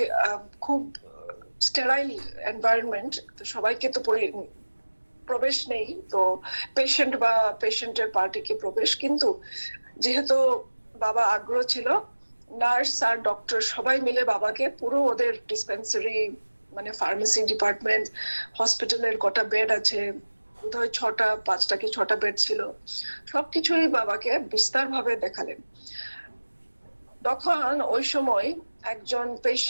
খুব স্টেরাইল এনভায়রনমেন্ট, তো সবাইকে তো প্রবেশ নেই, তো পেশেন্ট বা পেশেন্টের পার্টিকে প্রবেশ। কিন্তু যেহেতু বাবা আগ্রহ ছিল, নার্স আর ডক্টর সবাই মিলে বাবাকে পুরো ওদের ডিসপেন্সারি মানে ফার্মেসি ডিপার্টমেন্ট, হসপিটালের কটা বেড আছে, বোধহয় 5টা কি 6টা বেড ছিল, সবকিছুই বাবাকে বিস্তার ভাবে দেখালেন। তখন ওই সময় একজন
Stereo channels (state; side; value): inverted; both; correlation -1.00